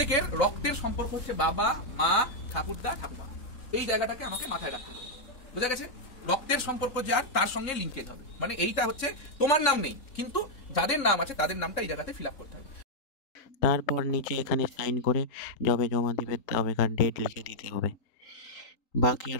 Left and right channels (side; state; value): right; late; 3.9 ms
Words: রক্তের সম্পর্ক হচ্ছে বাবা মা ঠাকুরদা ঠাকুমা, এই জায়গাটাকে আমাকে মাথায় রাখতে হবে। বোঝা গেছে? রক্তের সম্পর্ক যার তার সঙ্গে লিঙ্কেজ হবে, মানে এইটা হচ্ছে তোমার নাম নেই কিন্তু যাদের নাম আছে তাদের নামটা এই জায়গাতে ফিল আপ করতে হবে। তারপর নিচে এখানে সাইন করে যবে জমা দিবে তবেকার ডেট লিখে দিতে হবে। বাকি